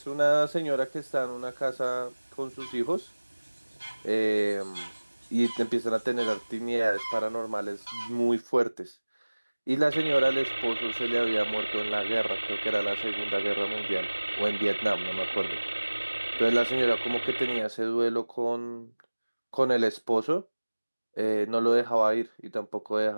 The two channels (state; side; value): inverted; both; correlation -1.00